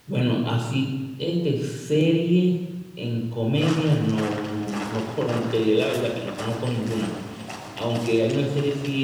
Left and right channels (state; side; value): identical; both; correlation 1.00